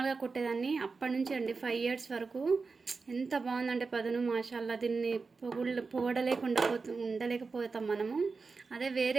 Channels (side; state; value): left; quieter; 4.4 dB